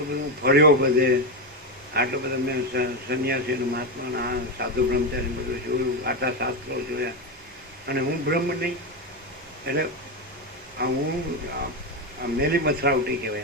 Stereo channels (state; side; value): normal; both; correlation 0.11